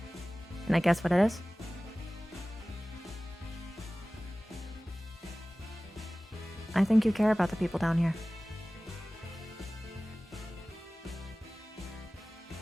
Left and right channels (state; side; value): normal; both; correlation 0.98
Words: Can I guess what it is? I think you care about the people down here.